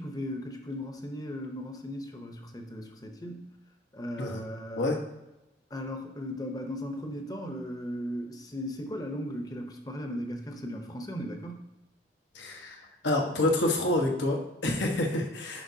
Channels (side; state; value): both; normal; correlation 0.48